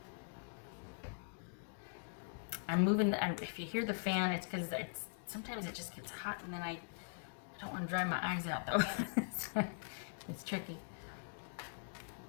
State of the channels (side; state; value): right; silent; digital silence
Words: I'm moving. If you hear the fan, it's because sometimes it just gets hot, and then I don't want to dry my eyes out though. It's tricky.